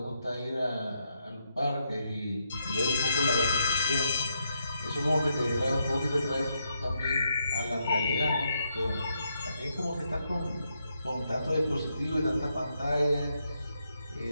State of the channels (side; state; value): both; inverted; correlation -0.80